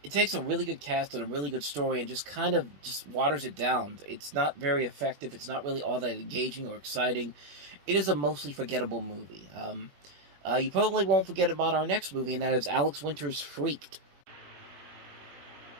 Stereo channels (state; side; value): late; left; 21 ms